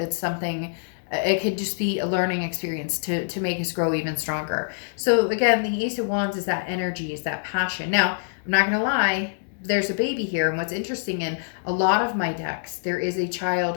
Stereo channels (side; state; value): right; silent; digital silence